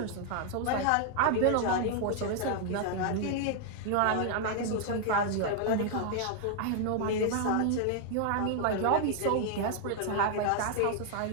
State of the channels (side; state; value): both; different; correlation 0.00